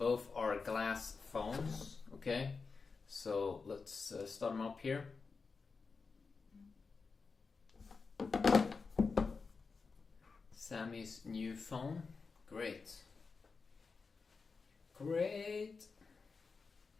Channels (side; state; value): right; quieter; 4.7 dB